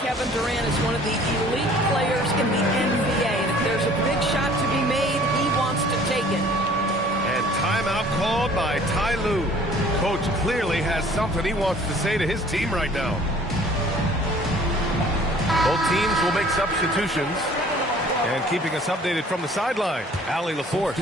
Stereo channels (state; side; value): normal; both; correlation 0.53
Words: Kevin Durant is one of the elite players in the NBA, and if there's a big shot to be made, he wants to take it. And timeout called by Ty Lue. Coach clearly has something he wants to say to his team right now. Both teams will make substitutions. And keeping us updated from the sideline, Allie LaForce.